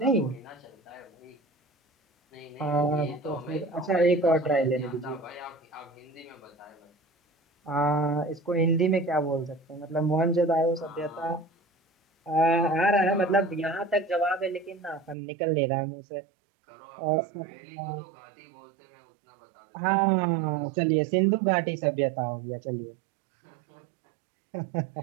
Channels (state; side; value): drops out; left; at 15.2 s